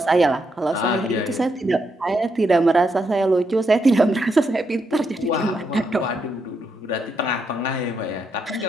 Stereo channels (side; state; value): both; normal; correlation 0.80